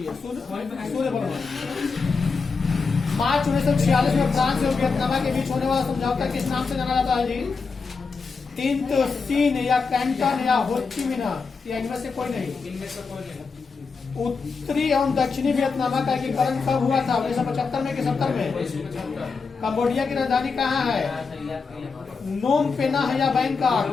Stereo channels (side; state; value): right; quieter; 4.8 dB